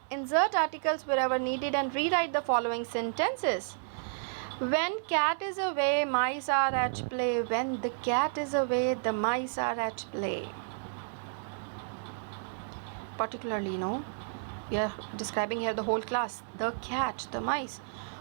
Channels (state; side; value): silent; left; digital silence